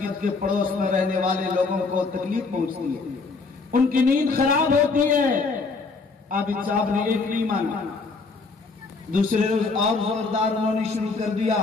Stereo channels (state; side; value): quieter; right; 4.2 dB